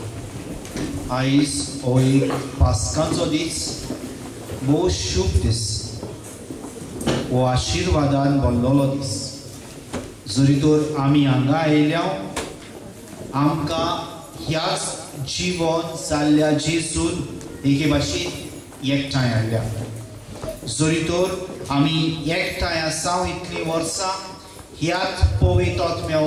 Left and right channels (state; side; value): identical; both; correlation 1.00